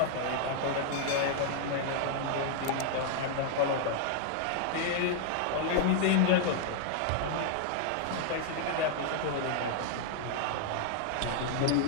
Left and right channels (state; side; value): different; both; correlation -0.01